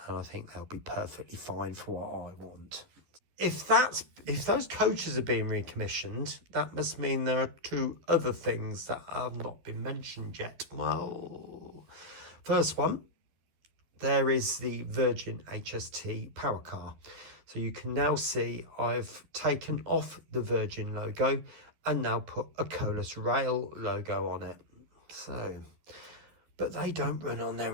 I think they'll be perfectly fine for what I want. If those coaches are being recommissioned, that must mean there are 2 other things that have not been mentioned yet. Well, first one, there is the Virgin HST power car. So you can now see I've taken off the Virgin logo and now put a Colas Rail logo on it. So, but they don't run on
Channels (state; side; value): late; left; 12 ms